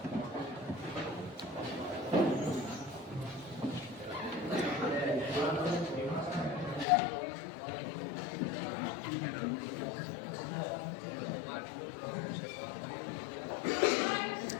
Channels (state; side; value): drops out; right; at 6.9 s